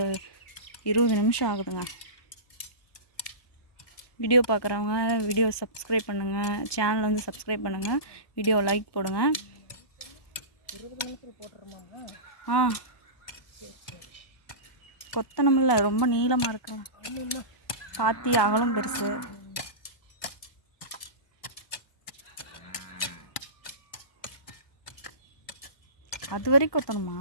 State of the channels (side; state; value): right; late; 1.2 ms